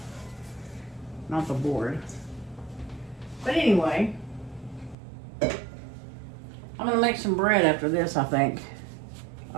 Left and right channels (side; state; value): left; drops out; at 5.0 s